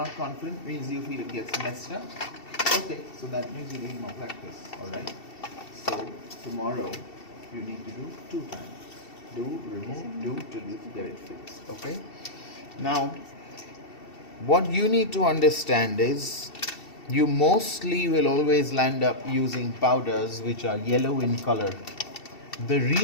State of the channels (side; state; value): right; late; 2.7 ms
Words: confident means you feel it gets messed up. Okay, so that means you need more practice. Alright? So tomorrow you need to do 2 times. Do, remove, do till you get it fixed. Okay? Now, what you need to understand is you mostly will always land up using powders which are yellow in color. The